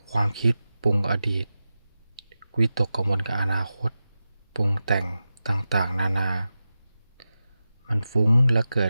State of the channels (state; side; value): inverted; both; correlation -0.93